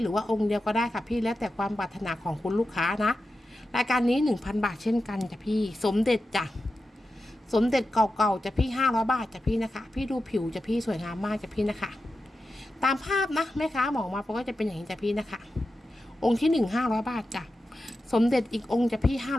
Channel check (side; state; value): both; normal; correlation 0.91